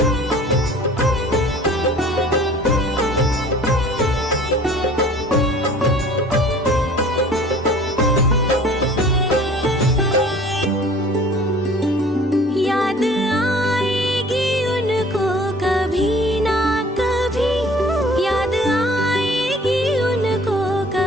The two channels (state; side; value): normal; both; correlation 0.49